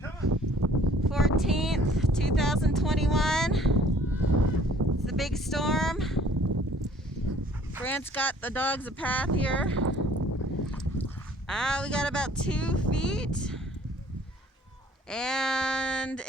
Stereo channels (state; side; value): normal; both; correlation 0.55